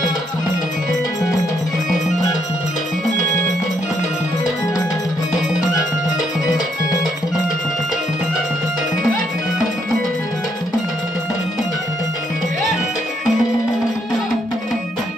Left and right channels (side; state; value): both; normal; correlation 0.74